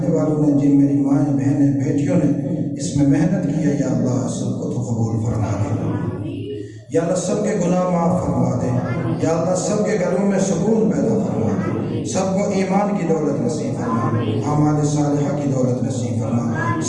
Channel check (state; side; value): identical; both; correlation 1.00